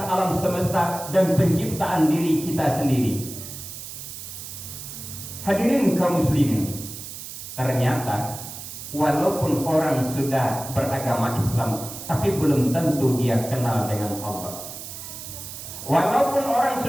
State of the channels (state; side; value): noise; right; hiss, 11 dB below the sound